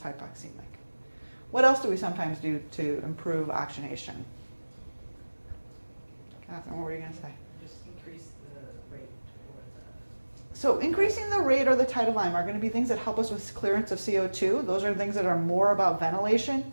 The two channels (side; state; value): both; inverted; correlation -1.00